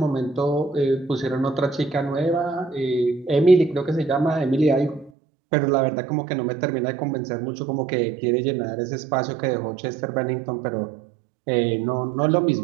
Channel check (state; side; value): drops out; left; at 5.1 s